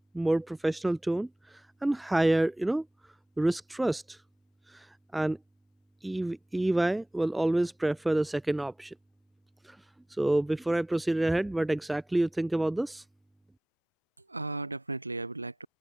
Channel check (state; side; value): normal; both; correlation 0.95